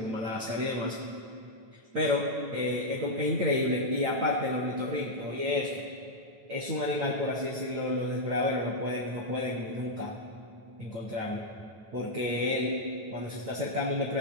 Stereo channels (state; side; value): late; left; 9.1 ms